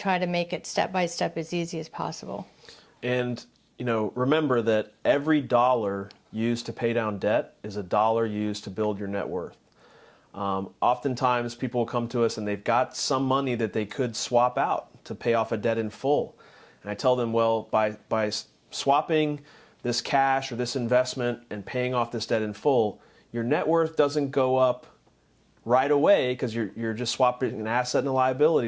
to make it step by step as easy as possible. And remember that every dollar used to pay down debt is a dollar used to build your net worth. Oftentimes people will come to us and they've got some money that they could swap out to pay off a debt in full. And I tell them, well, by swapping this cash or this investment and paying off this debt in full, your net worth doesn't go up right away because you're just swapping an asset and a liability.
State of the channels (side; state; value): both; identical; correlation 1.00